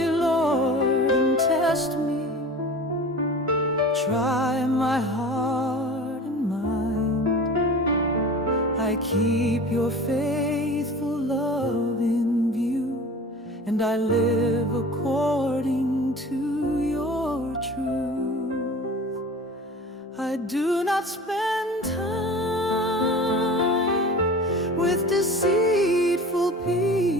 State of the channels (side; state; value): both; normal; correlation 0.38